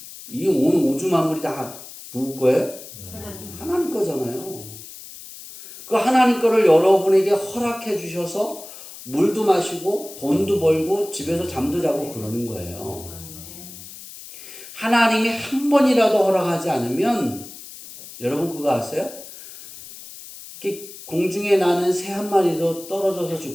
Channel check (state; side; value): noise; left; hiss, 15 dB below the sound